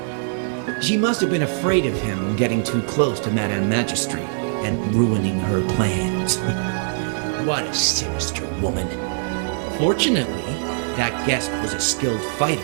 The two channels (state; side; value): silent; left; digital silence